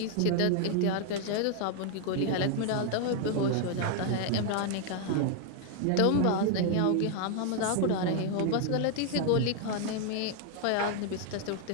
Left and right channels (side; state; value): both; different; correlation 0.00